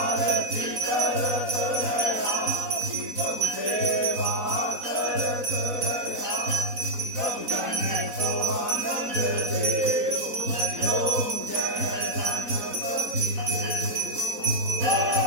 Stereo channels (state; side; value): late; left; 4.0 ms